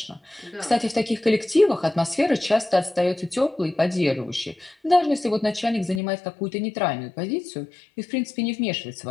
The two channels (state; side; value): drops out; right; at 6.0 s